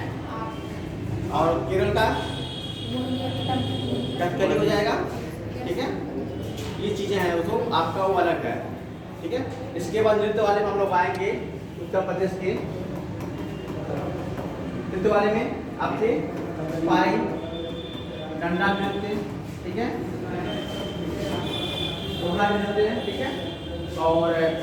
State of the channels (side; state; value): both; identical; correlation 1.00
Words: और केरल का मोहिनीअट्टम, कथकली हो जाएगा, ठीक है। ये चीज़ें हैं, वो तो आपका वो अलग है, ठीक है। इसके बाद नृत्य वाले में हम लोग आएंगे उत्तर प्रदेश के नृत्य वाले में आपसे पाई, डंडा नृत्य, ठीक है, घोड़ा नृत्य, ठीक है, और